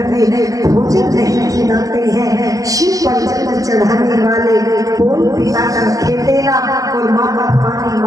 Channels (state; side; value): late; left; 0.17 ms